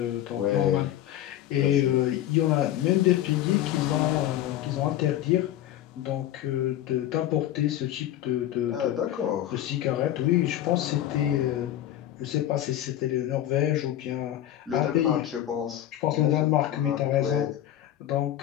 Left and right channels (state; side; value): quieter; right; 12.5 dB